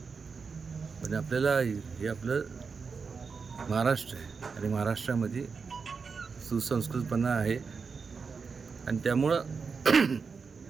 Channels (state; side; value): quieter; left; 5.2 dB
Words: पण आपल्याला हे आपलं महाराष्ट्र आहे आणि महाराष्ट्रामध्ये सुसंस्कृतपणा आहे आणि त्यामुळं